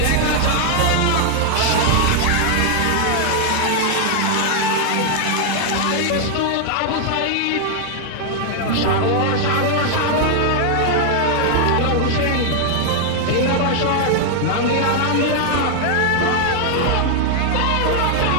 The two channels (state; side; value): different; both; correlation 0.00